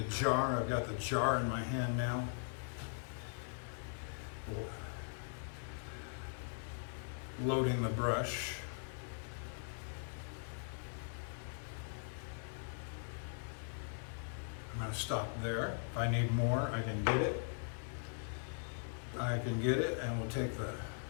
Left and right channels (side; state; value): right; silent; digital silence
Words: jar. I've got the jar in my hand now. Loading the brush. I'm going to stop there. If I need more, I can get it. And we'll take the